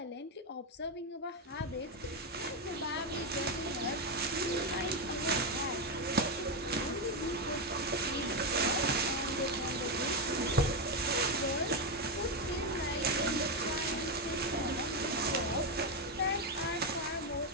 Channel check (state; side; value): normal; both; correlation 0.07